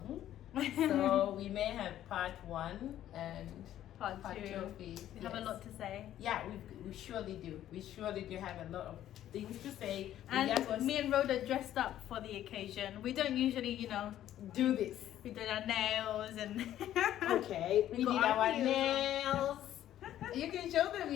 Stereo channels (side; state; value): right; quieter; 12.1 dB